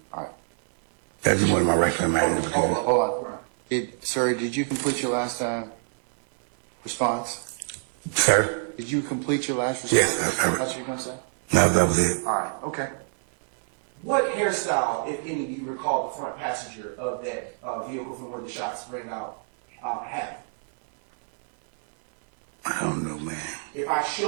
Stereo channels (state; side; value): silent; left; digital silence